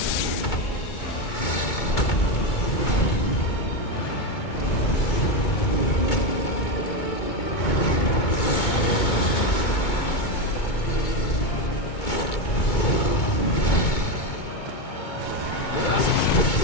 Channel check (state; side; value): late; right; 2.2 ms